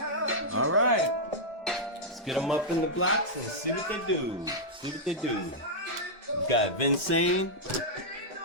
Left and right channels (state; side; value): normal; both; correlation -0.08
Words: Alright. Get them up in the blocks and see what they do. See what they do. We've got Vincent,